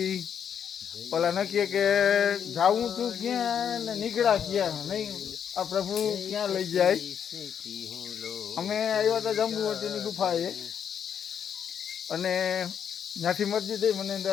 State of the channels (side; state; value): right; quieter; 8.2 dB